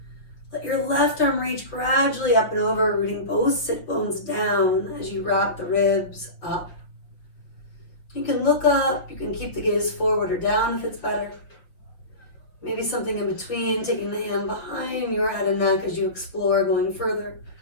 Let your left arm reach gradually up and over, rooting both sit bones down as you wrap the ribs up. You can look up, you can keep the gaze forward or down if it's better. Maybe something in between, taking the hand behind your head and neck as you explore going further.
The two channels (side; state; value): right; late; 6.0 ms